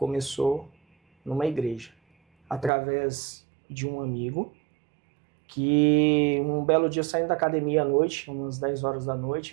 numa igreja, através de um amigo, que um belo dia saindo da academia à noite, umas 10 horas da noite,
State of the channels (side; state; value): left; drops out; at 2.7 s